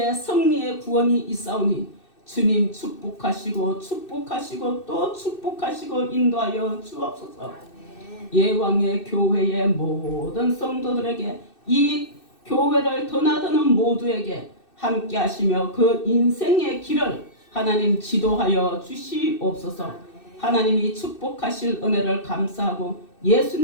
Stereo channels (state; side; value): late; right; 2.6 ms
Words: 승리의 구원이 있사오니 주님 축복하시고 축복하시고 또 축복하시고 인도하여 주옵소서. 예왕의 교회의 모든 성도들에게 이 교회를 드나드는 모두에게 함께 하시며 그 인생의 길을 하나님 지도하여 주시옵소서. 하나님이 축복하실 은혜를 감사하고